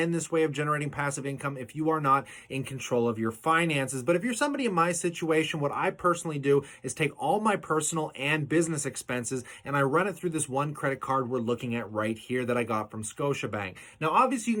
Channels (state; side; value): identical; both; correlation 1.00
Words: this way of generating passive income if you are not in control of your finances. But if you're somebody in my situation, what I personally do is take all my personal and business expenses and I run it through this one credit card we're looking at right here that I got from Scotiabank. Now, obviously, you